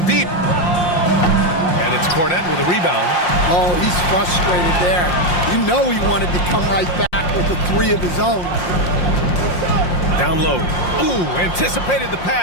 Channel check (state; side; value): late; right; 5.7 ms